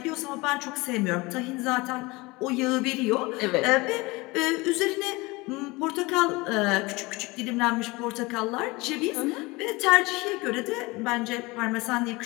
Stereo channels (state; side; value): quieter; right; 23.4 dB